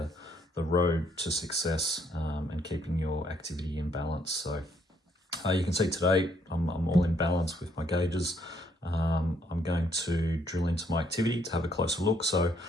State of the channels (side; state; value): both; normal; correlation 0.70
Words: road to success and keeping your activity in balance. So you can see today I'm all in balance with my gauges. I'm going to drill into my activity to have a closer look. So